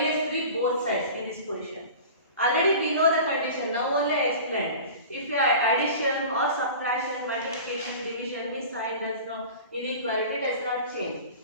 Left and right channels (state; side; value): inverted; both; correlation -0.37